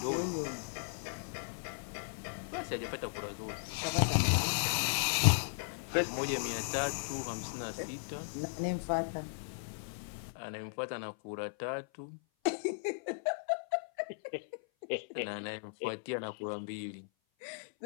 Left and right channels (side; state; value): right; silent; 54 dB below the other